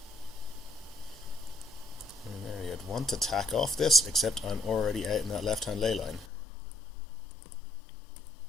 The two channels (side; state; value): right; drops out; at 6.2 s